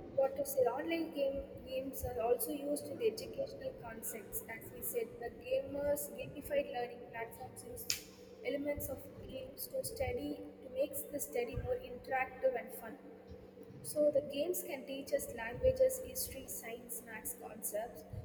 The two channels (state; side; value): identical; both; correlation 1.00